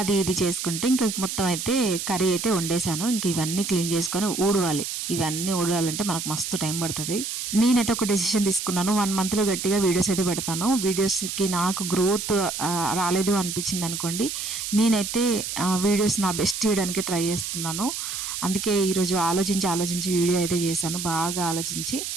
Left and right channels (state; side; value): noise; right; hiss, 5 dB below the sound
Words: అది ఇది చేసుకుంటే ఇంకా మొత్తం అయితే curry అయితే వండేసాను. ఇంక ఇవన్నీ క్లీన్ చేసుకొని ఊడవాలి. ఇవన్నీ ఊడాలంటే మనకు మస్తు టైం పడుతుంది. నేనైతే ఒక డెసిషన్ తీసుకున్నాను, 1 monthలో గట్టిగా వీడియోస్ అయితే పెడతాను. వీడియోస్కి నాకు గ్రోత్ రాలేదు అనిపించింది అనుకోండి, నేనైతే వీడియోస్ నా బెస్ట్ చేయడానికి ట్రై చేస్తున్నాను. అందుకే ఈరోజు ఆలోచించి వీడియో అయితే చేశాను. బాగా ఆలోచించి